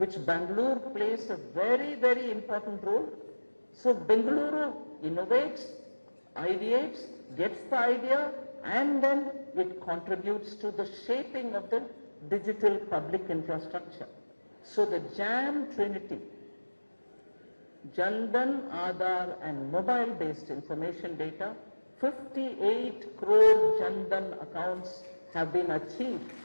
Bengaluru plays a very, very important role. So Bengaluru innovates, ideates, gets the idea, and then it contributes to the shaping of the digital public infrastructure. So the JAM Trinity, Jandan, Aadhaar and mobile-based information data, 58 crore Jandan accounts have been achieved.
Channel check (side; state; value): both; inverted; correlation -1.00